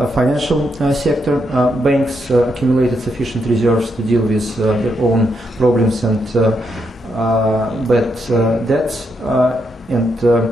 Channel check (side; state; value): both; normal; correlation 0.80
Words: financial sector. Banks accumulated sufficient reserves to deal with their own problems and bad debts, and